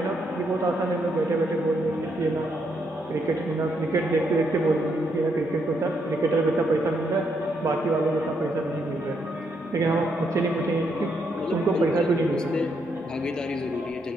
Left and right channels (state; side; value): normal; both; correlation 0.76